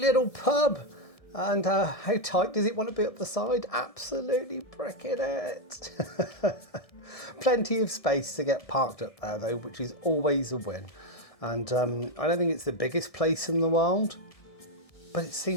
pub. And how tight does it want to be up the side? Absolutely bricking it. Plenty of space to get parked up there though, which is always a win. And I don't think it's the biggest place in the world, but it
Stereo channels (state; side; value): late; right; 1.6 ms